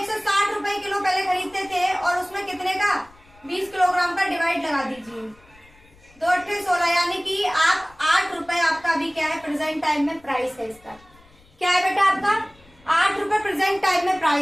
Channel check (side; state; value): left; noise; rumble, 28 dB below the sound